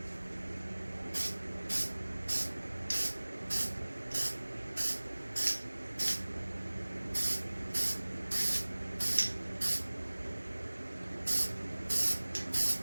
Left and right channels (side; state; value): both; inverted; correlation -1.00